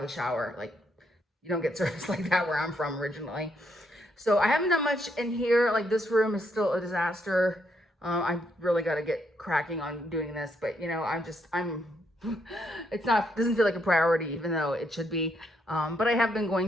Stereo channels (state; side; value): normal; both; correlation 0.75